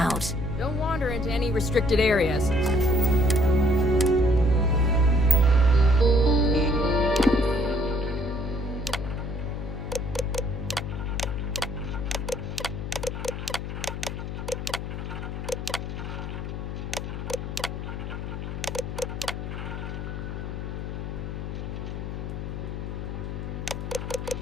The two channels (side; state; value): left; noise; hum, 5 dB below the sound